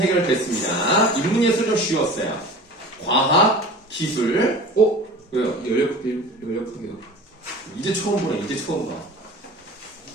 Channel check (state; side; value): normal; both; correlation 0.39